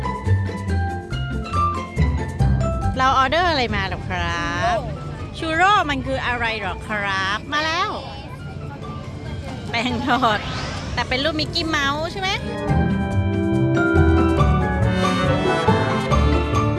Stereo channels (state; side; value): identical; both; correlation 1.00